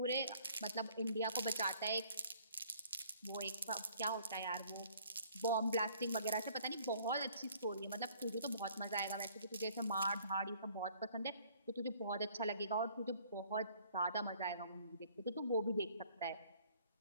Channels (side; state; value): both; inverted; correlation -0.58